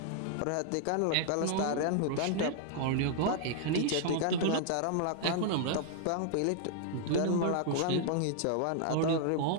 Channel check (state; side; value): different; both; correlation -0.01